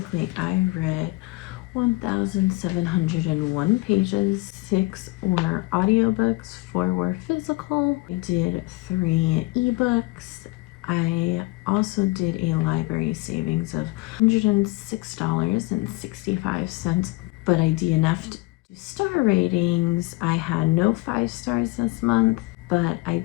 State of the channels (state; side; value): quieter; right; 22.1 dB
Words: I read 1,701 pages, 6 were audiobooks, 4 were physical. I did 3 ebooks. I also did a library savings of $106.65, but I DNF'd star ratings. I had no 5 stars this month, but I